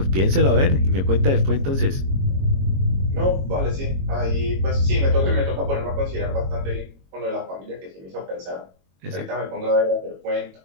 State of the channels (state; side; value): late; left; 22 ms